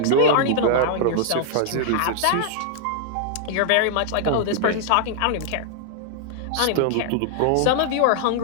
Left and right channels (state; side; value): different; both; correlation -0.01